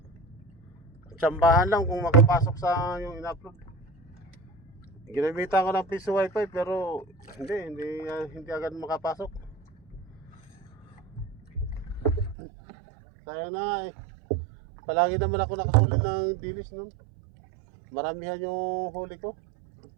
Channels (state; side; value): drops out; left; at 12.4 s